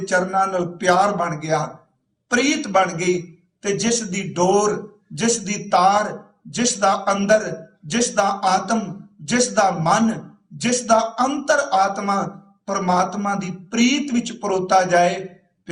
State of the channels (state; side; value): identical; both; correlation 1.00